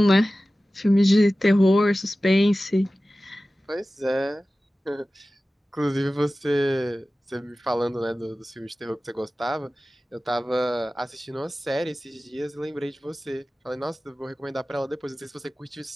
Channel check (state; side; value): normal; both; correlation 0.96